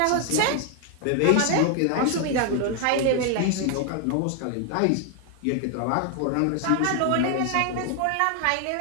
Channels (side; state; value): both; different; correlation 0.00